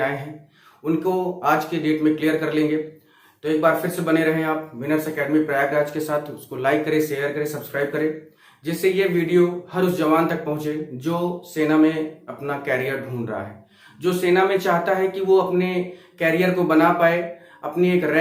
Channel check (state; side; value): identical; both; correlation 1.00